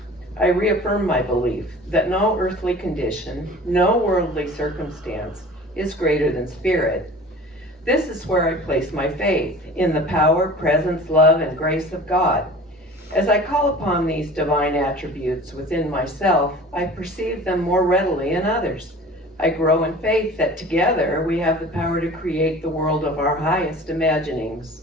I reaffirm my belief that no earthly condition, no worldly circumstance is greater than spirit. This is where I place my faith, in the power, presence, love, and grace of God. As I call upon these divine attributes within myself, I perceive them more readily in others. I grow in faith that together we have the power to create the world of our highest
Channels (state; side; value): normal; both; correlation 0.42